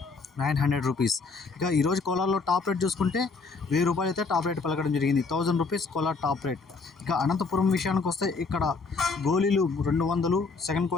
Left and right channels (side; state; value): right; quieter; 4.4 dB